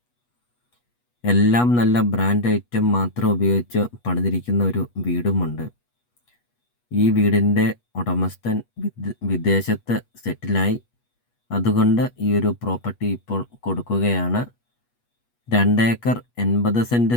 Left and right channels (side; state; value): right; late; 8.3 ms